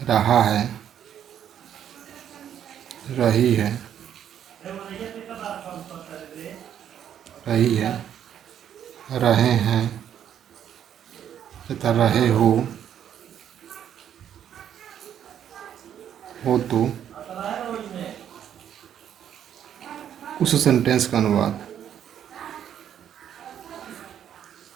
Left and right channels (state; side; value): quieter; left; 9.7 dB